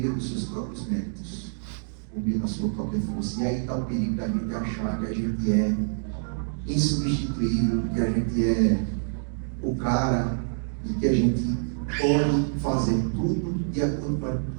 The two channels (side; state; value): left; silent; digital silence